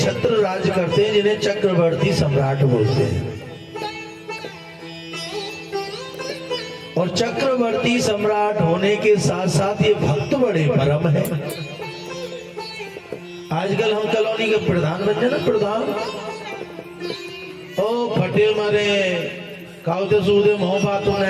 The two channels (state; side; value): identical; both; correlation 1.00